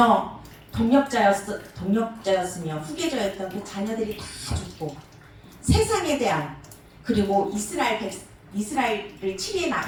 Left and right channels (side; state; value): both; identical; correlation 1.00